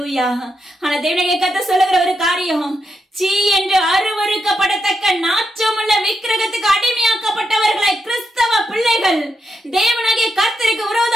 ஆனா தேவனாகிய கர்த்தர் சொல்லுகிற ஒரு காரியம், சீ என்று அருவருக்கப்படத்தக்க நாற்றமுள்ள விக்கிரகத்துக்கு அடிமையாக்கப்பட்டவர்களாய் கிறிஸ்தவ பிள்ளைகள் தேவனாகிய கர்த்தருக்கு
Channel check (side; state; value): both; normal; correlation 0.84